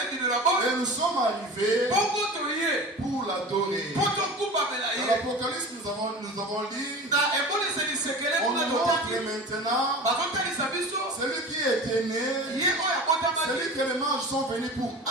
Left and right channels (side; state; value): both; normal; correlation 0.35